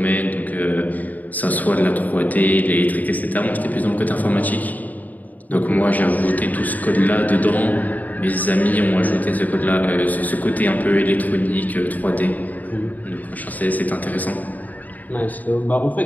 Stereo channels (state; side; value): late; right; 0.079 ms